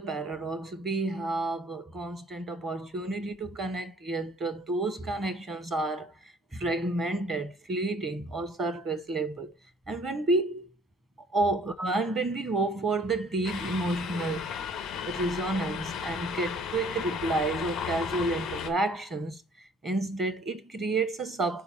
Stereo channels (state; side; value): normal; both; correlation 0.56